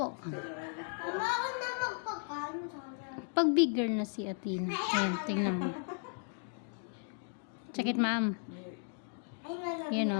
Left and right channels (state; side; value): silent; right; 54 dB below the other